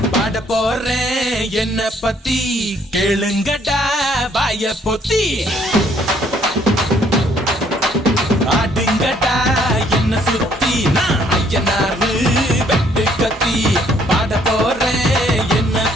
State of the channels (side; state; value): both; normal; correlation 0.65